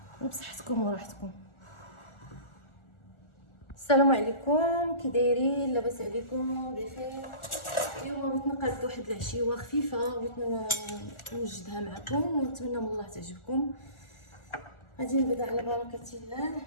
وبصحتكم وراحتكم. السلام عليكم، كي دايرين؟ لاباس عليكم؟ بخير. اليوم بغيت نقاد واحد العشيوه خفيفه، بغيت نوجدها معكم ونتمنى من الله تعجبكم. غادي نبدا على بركه الله.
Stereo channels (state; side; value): late; right; 1.4 ms